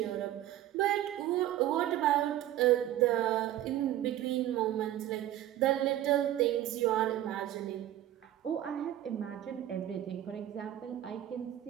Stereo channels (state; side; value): quieter; left; 12.9 dB